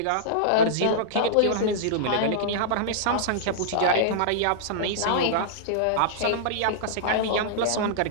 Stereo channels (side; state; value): both; different; correlation -0.02